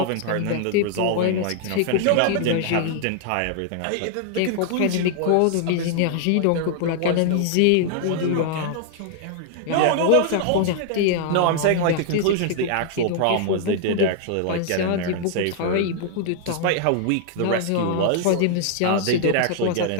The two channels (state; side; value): different; both; correlation 0.00